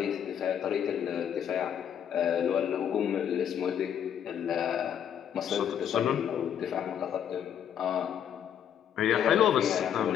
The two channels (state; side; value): quieter; right; 9.2 dB